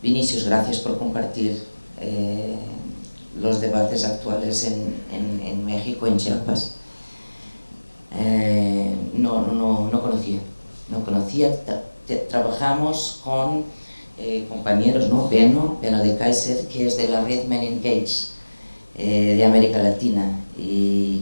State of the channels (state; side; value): inverted; both; correlation -1.00